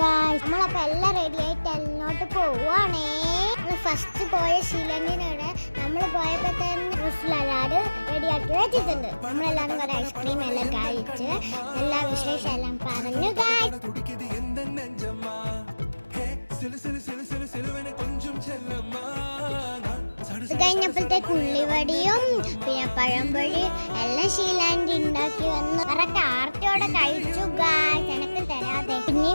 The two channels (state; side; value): inverted; both; correlation -1.00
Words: ഗായ്സ്. നമ്മളപ്പോ എല്ലാം റെഡി ആയിട്ട് എല്ലോട്ട് പോവാണേ. ഫസ്റ്റ് പോയ ഷീലണ്ടിനോട് നമ്മൾ പോയപ്പോ തന്നെ എല്ലാവരും റെഡിയാക്കി വെച്ചിട്ടുണ്ട്. നമ്മളെല്ലാരും കുറെ ഐസ്ക്രീം എല്ലാം കഴിച്ച് എല്ലാ വിശേഷം എല്ലാം പറഞ്ഞു ഗായ്സ്. കഴിഞ്ഞപ്പോഴത്തേക്ക് ഉള്ളിവടിയും പിന്നെ പഴംപൊഴി എല്ലാം ഷീലാൻഡി ഉണ്ടാക്കി വന്നു. കറക്റ്റ് ആർത്തിയോടെ കഴിച്ചു ഗായ്സ്, എനിക്ക് തരാതെ.